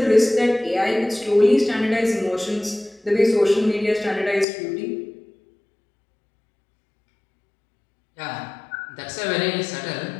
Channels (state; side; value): drops out; right; at 4.5 s